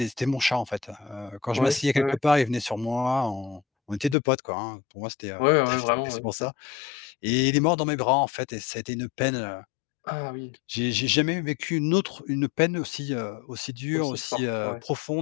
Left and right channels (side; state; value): right; drops out; at 4.2 s